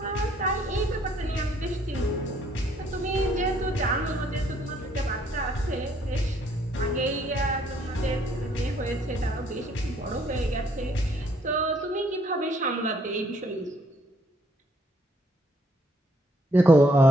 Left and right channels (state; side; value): normal; both; correlation 0.67